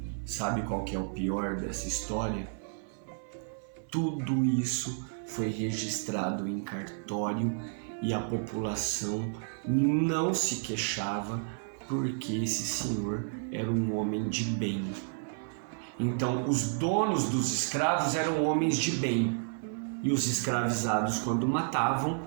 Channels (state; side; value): silent; left; 56 dB below the other